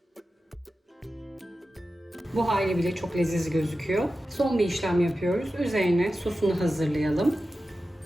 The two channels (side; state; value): both; normal; correlation 0.93